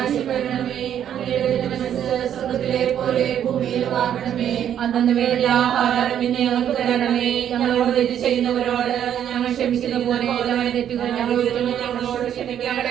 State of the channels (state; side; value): quieter; left; 9.8 dB